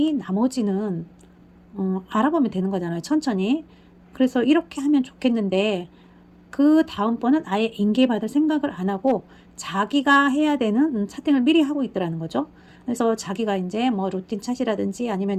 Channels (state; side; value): identical; both; correlation 1.00